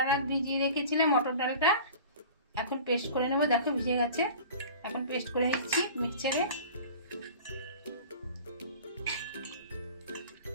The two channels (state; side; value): inverted; both; correlation -0.41